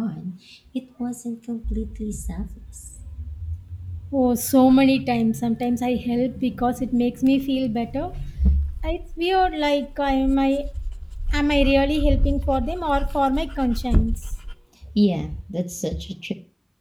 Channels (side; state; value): both; identical; correlation 1.00